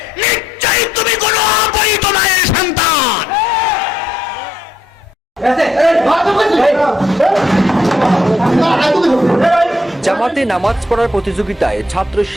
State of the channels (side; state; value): both; normal; correlation 0.72